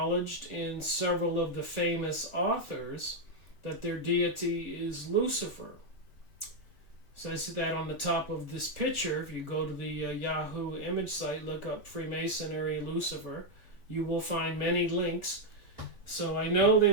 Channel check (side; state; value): right; late; 3.5 ms